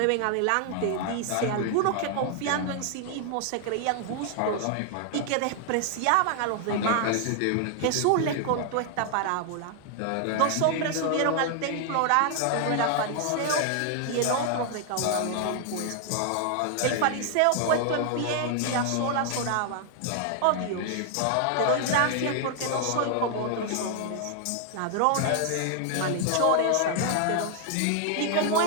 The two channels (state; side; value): different; both; correlation 0.00